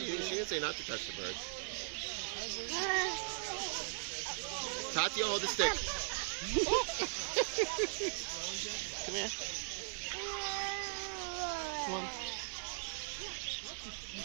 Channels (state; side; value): silent; left; 52 dB below the other